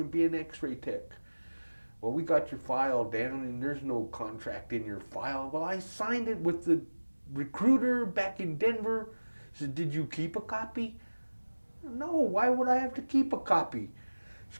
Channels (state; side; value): inverted; both; correlation -1.00